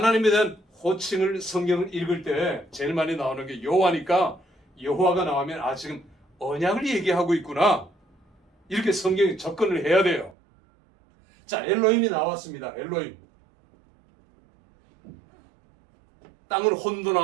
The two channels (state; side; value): drops out; left; at 10.4 s